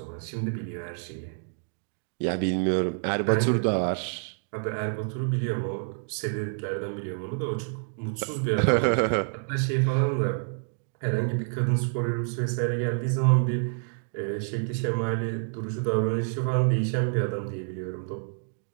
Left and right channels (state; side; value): silent; left; digital silence